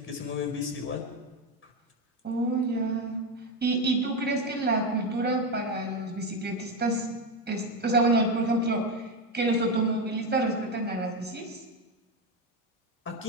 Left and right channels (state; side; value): normal; both; correlation 0.11